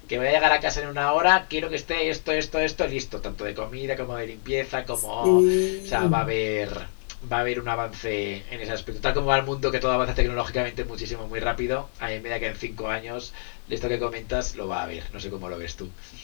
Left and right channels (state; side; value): silent; right; digital silence